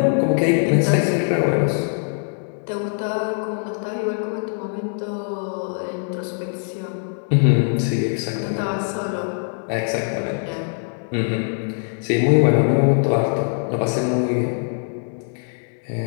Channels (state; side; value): silent; right; 64 dB below the other